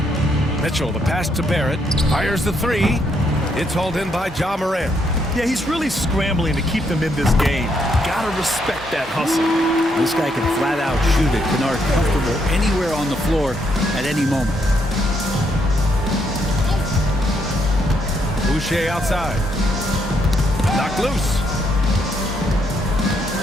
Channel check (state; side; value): normal; both; correlation 0.75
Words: Mitchell, the pass to Barrett. Fires the 3. It's hauled in by Ja Morant. Yeah, he's really scrambling to keep them in this game. Gotta respect that hustle. This guy can flat out shoot it. Kennard comfortable anywhere on the floor at any moment. Boucher outside. Knocked loose.